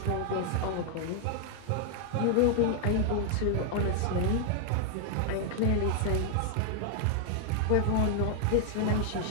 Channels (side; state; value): both; different; correlation 0.00